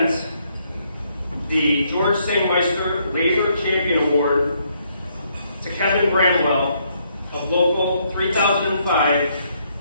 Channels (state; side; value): inverted; both; correlation -0.72